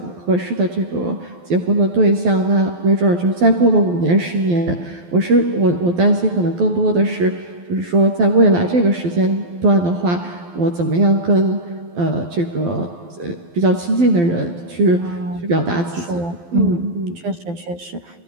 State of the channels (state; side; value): late; left; 12 ms